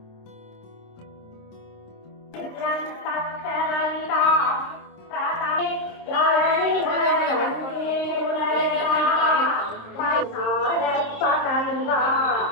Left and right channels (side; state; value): right; late; 26 ms